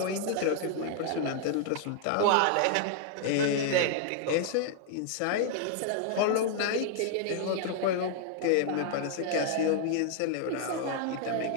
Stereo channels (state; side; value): different; both; correlation 0.00